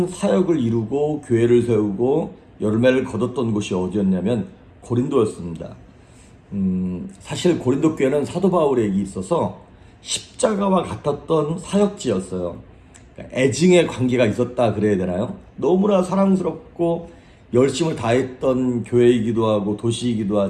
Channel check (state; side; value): identical; both; correlation 1.00